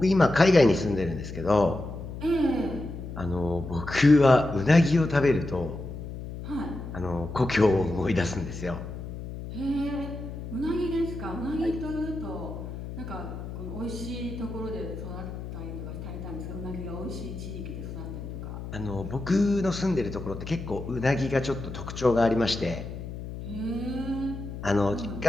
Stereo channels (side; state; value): left; noise; hum, 9 dB below the sound